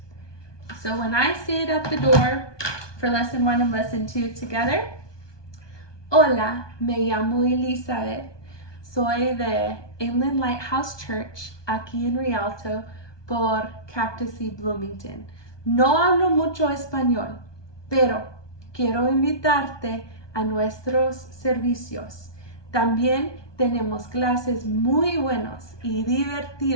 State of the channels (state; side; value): late; right; 1.2 ms